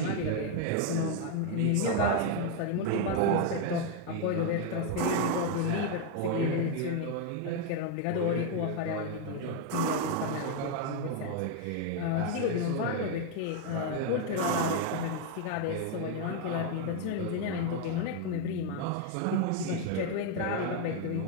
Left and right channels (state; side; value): different; both; correlation 0.01